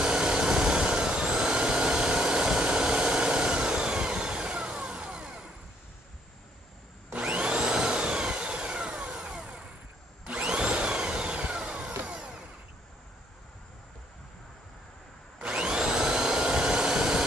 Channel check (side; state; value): both; normal; correlation 0.68